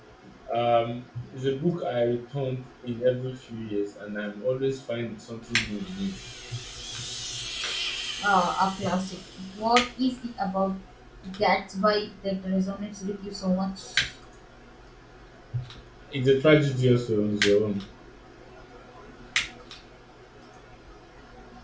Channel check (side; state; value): both; identical; correlation 1.00